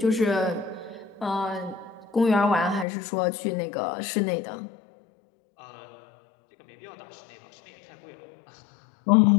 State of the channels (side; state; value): right; drops out; at 2.9 s